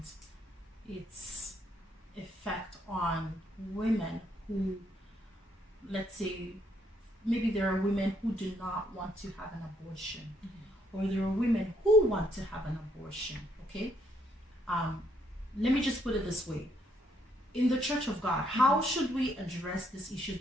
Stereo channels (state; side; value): normal; both; correlation 0.71